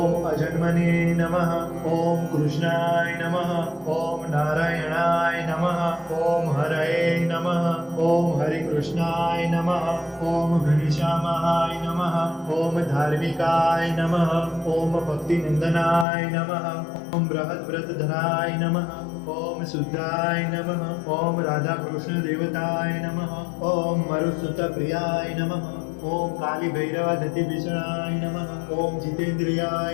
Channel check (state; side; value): drops out; right; at 16.1 s